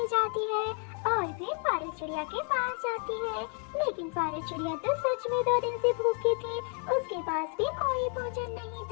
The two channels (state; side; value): quieter; right; 39.5 dB